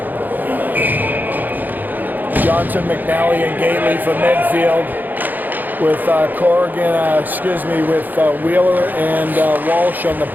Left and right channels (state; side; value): late; left; 0.085 ms